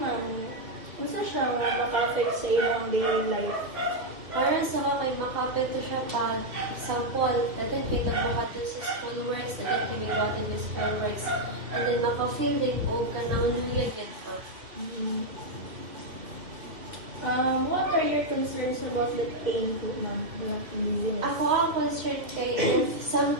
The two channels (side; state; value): left; late; 2.6 ms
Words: unsa siya maka-affect sa iyong daily life? Para sa kay maka-apekto siya pag sample, dagan kay nagbuhaton sa school works, dagan kay mibuhaton sa school works, and then maka-feel din o kanang luya yun pa. What are your concerns about the pain po, ma'am? The dizziness? Ako ang concern kay if